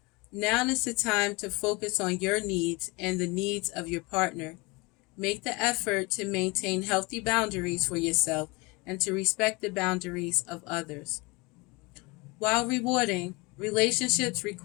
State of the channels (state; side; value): quieter; right; 25.8 dB